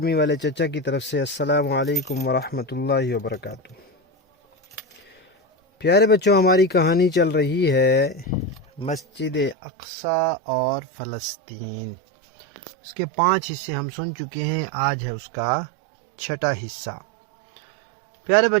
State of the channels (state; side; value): drops out; left; at 9.6 s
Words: والے چچا کی طرف سے السلام علیکم ورحمۃ اللہ وبرکاتہ۔ پیارے بچوں، ہماری کہانی چل رہی ہے مسجد اقصی اور فلسطین۔ اس کے 5 حصے ہم سن چکے ہیں، آج ہے اس کا 6واں حصہ۔ پیارے